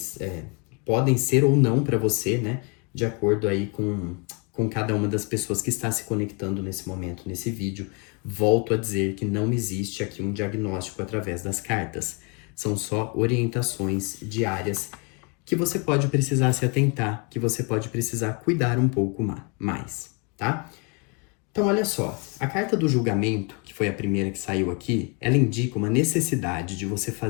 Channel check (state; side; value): quieter; right; 33.2 dB